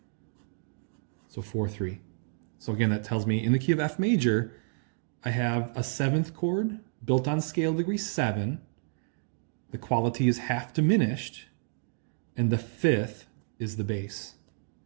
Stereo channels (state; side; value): silent; left; digital silence